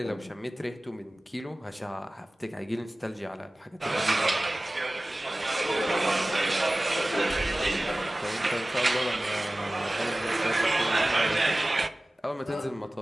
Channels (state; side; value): normal; both; correlation 0.98